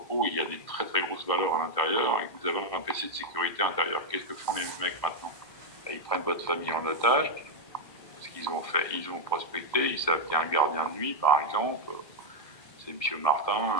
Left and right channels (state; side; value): late; right; 1.6 ms